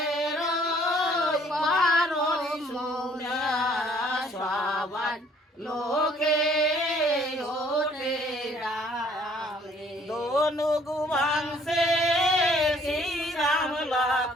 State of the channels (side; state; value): both; normal; correlation 0.60